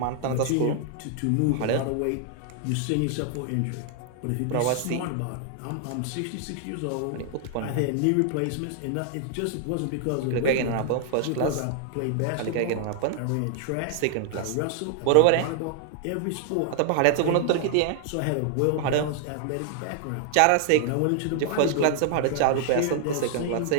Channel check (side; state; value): both; different; correlation 0.00